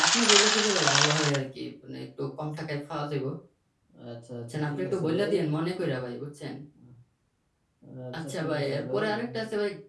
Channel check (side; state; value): both; identical; correlation 1.00